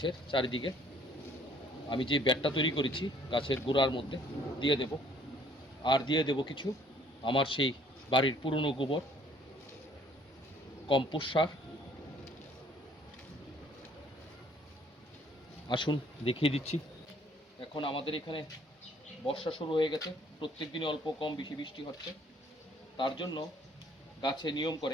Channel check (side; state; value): both; normal; correlation 0.60